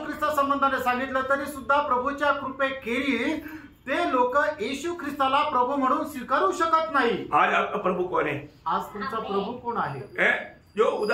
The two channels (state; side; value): identical; both; correlation 1.00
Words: संबंधाने सांगितलं तरी सुद्धा प्रभूच्या कृपेखेरीज ते लोक येशू ख्रिस्ताला प्रभू म्हणून स्वीकारू शकत नाही। आज आपका प्रभु कौन है? आज तुमचा प्रभु कोण आहे? जो